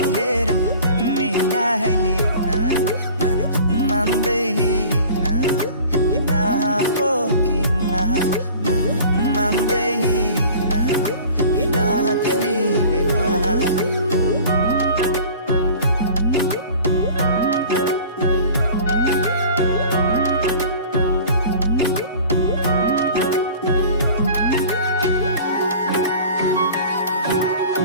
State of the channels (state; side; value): inverted; both; correlation -0.43